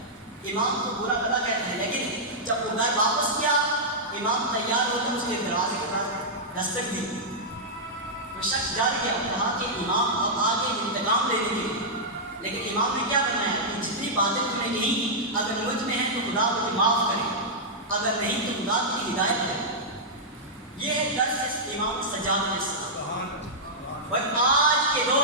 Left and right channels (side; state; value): both; normal; correlation -0.09